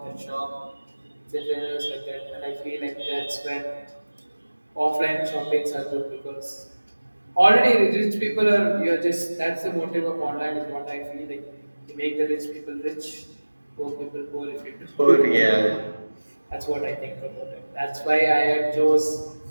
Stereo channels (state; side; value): inverted; both; correlation -1.00